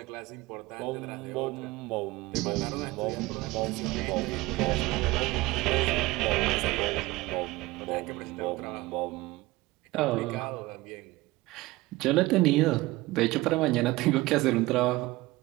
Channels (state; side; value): quieter; left; 20.0 dB